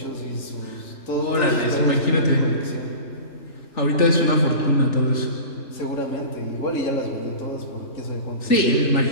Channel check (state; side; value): late; right; 3.4 ms